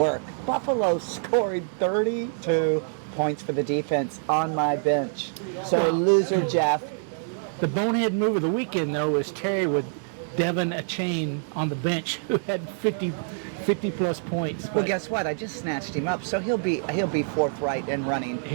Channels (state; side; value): silent; left; 61 dB below the other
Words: Buffalo scored 32 points for the defense on my bench. So loser Jeff. The bonehead move of the weekend, though, was Terry with Devin Achane on the bench, who had 50-plus points. Well, guess what? I just snatched him up, so he'll be forthright and running